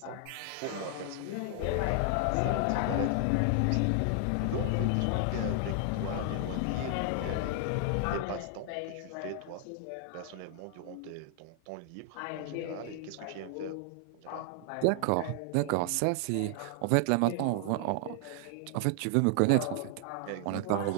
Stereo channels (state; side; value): different; both; correlation 0.00